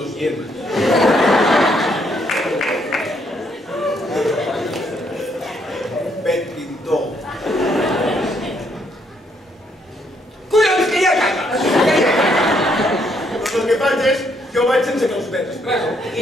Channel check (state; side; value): normal; both; correlation 0.72